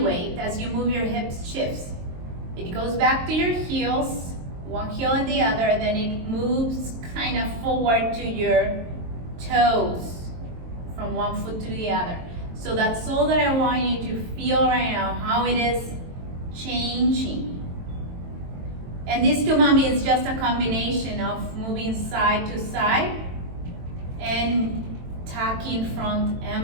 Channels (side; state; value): left; late; 22 ms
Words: as you move your hips, shifts. It goes back to your heels, one heel and the other, and then it moves kind of forward to your toes from one foot to the other. So that's all that I want you to feel right now, how it is changing. And this tumami is just a combination of moving side to side and tucking front